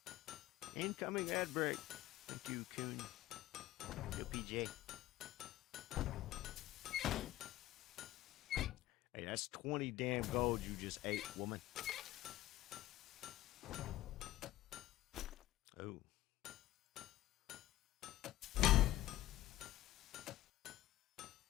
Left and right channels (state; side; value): quieter; right; 15.3 dB